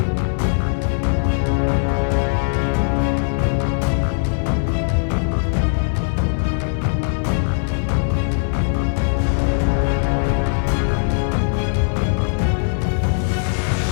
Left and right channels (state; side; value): silent; right; 66 dB below the other